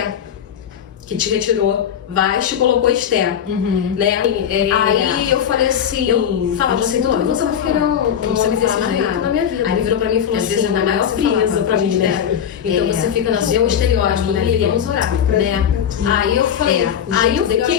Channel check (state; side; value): quieter; right; 8.8 dB